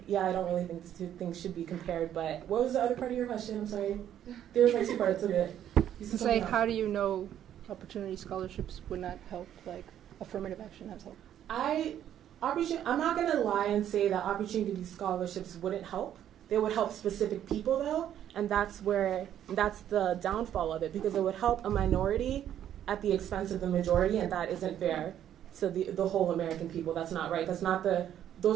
really think the two things should be compared, but what was the other part of your question? I'm sorry. There was like two parts of it. It's like, how do you know opportunity scholarships would not help, like affirmative action has helped? I'm not going to lie and say that opportunity scholarships wouldn't help. They would help specific people, though, and that's the downfall of it, because it would help a minority at the expense of the majority, and that isn't fair to the whole American people. That's not right.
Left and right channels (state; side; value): quieter; left; 10.6 dB